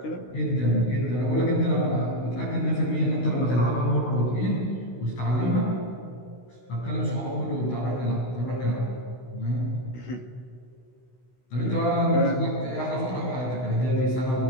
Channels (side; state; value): right; late; 16 ms